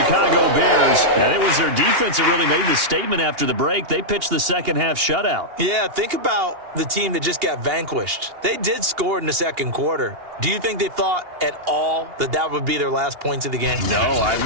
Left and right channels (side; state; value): left; late; 2.8 ms